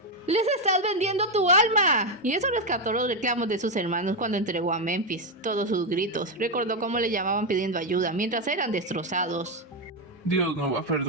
¡Les estás vendiendo tu alma! Y eso rescató los reclamos de sus hermanos cuando entregó a Memphis. Todos sus gritos. Recordó cómo le llamaban pidiendo ayuda mientras eran destrozados. Dios no va a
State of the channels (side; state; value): both; normal; correlation 0.05